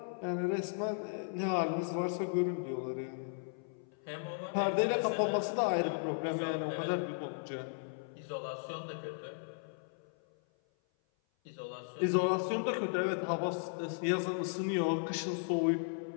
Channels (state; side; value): silent; right; 54 dB below the other